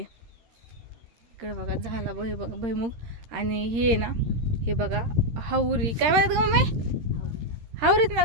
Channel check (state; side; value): late; left; 13 ms